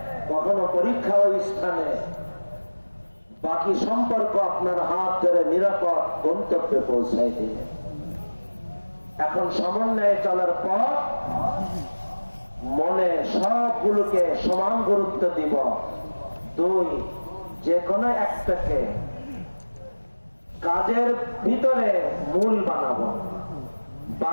কখনো পরীক্ষা ওই স্থানে, বাকি সম্পর্ক আপনার হাত ধরে নিরাপদ গন্তব্যে পৌঁছাই দিয়ে। এখন সমন্বয়ে চলার পর মনে সবগুলোকে সমান গুরুত্ব দিব। দুই, যে কোনো একটাকে কাজের ভিতরে মূল বানাবো,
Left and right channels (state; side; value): inverted; both; correlation -1.00